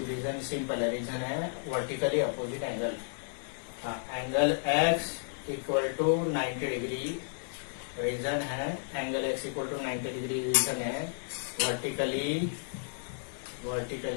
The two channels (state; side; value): silent; right; digital silence